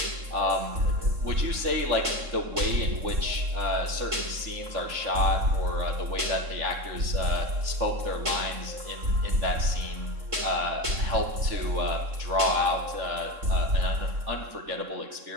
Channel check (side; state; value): left; late; 3.7 ms